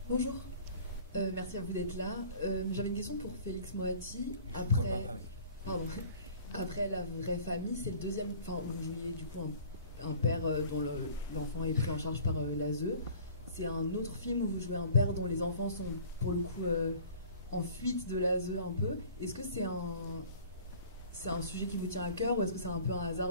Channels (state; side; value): inverted; both; correlation -0.47